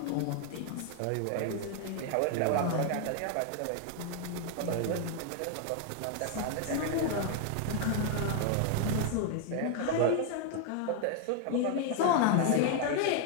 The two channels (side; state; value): both; different; correlation 0.00